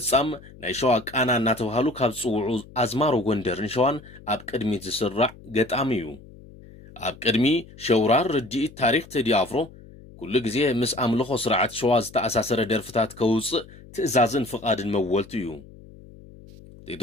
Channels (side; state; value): left; noise; hum, 20 dB below the sound